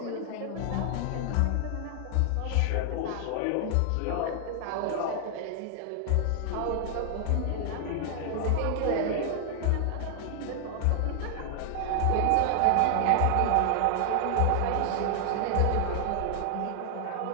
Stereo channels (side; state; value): both; different; correlation 0.00